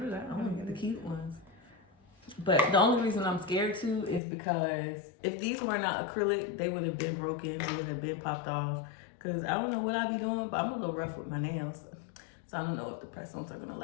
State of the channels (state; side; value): drops out; right; at 4.2 s